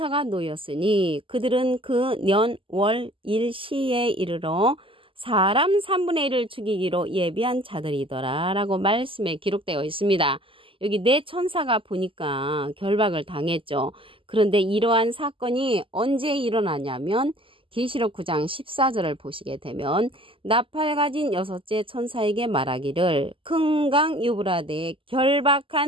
놓였으니 그들은 그 년, 월, 일, 시에 이르러 사람 3분의 1을 죽이기로 예비한 자들이더라 라고 말씀에 기록되어 있습니다. 여기 네 천사가 보니까 결박을 당했죠. 그런데 이러한 사건이 언제 일어나냐면 계시록 9장 14절을 보시게 되면 나팔 가진 여섯째 천사에게 말하기를 큰 강 유브라데에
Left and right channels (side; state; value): left; late; 0.25 ms